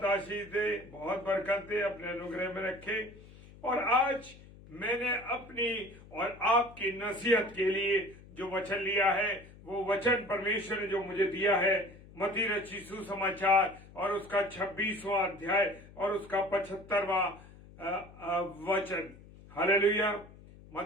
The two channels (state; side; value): noise; left; hum, 20 dB below the sound